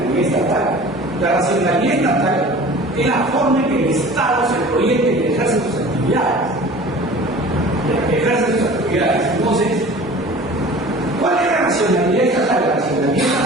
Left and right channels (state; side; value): normal; both; correlation 0.42